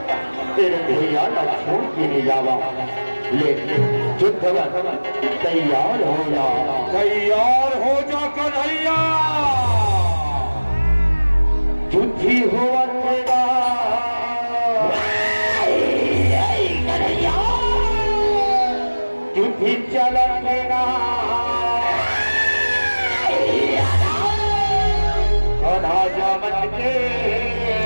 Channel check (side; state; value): both; inverted; correlation -1.00